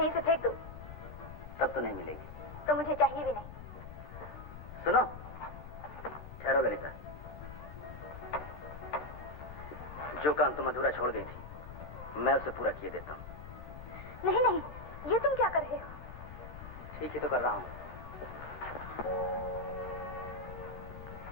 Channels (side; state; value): left; noise; rumble, 12 dB below the sound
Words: से फेंक दो। तब तो नहीं मिलेगी। तो मुझे चाहिए भी नहीं। सुनो, ठहरो ललिता। जो काम तुम अधूरा छोड़ गई थी, मैं उसे पूरा किए देता हूँ। नहीं नहीं, ये तुम क्या कर रहे हो? ठीक है तो कर रहा हूँ।